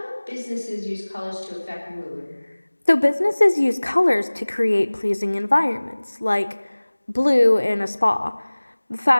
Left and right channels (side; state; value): both; inverted; correlation -1.00